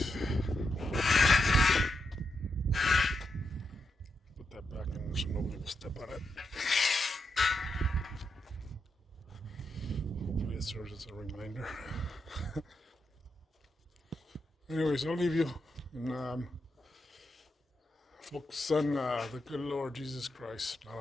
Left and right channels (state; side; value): normal; both; correlation 0.84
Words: put that back in there so nobody will step on it. Hopefully it serves as a reminder. Anyways, I'll leave you and focus on the good Lord Jesus Christ, not